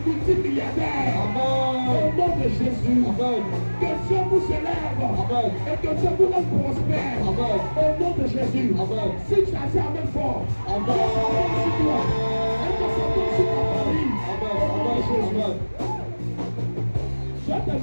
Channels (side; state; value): both; inverted; correlation -1.00